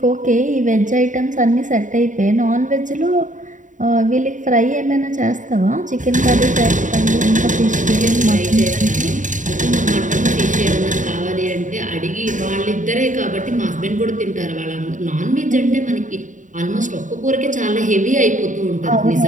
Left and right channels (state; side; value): late; left; 0.37 ms